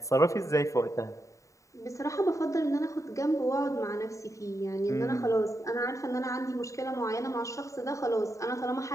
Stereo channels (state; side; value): late; right; 0.15 ms